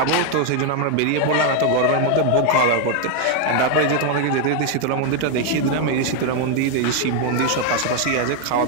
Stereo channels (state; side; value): different; both; correlation 0.01